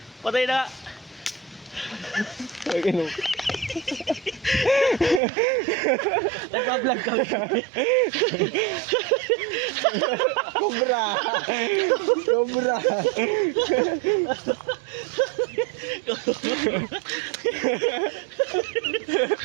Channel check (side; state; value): left; drops out; at 5.2 s